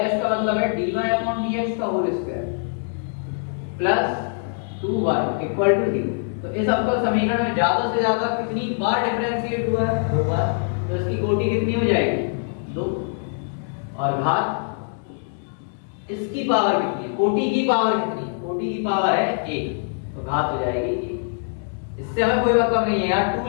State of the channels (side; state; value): right; silent; 63 dB below the other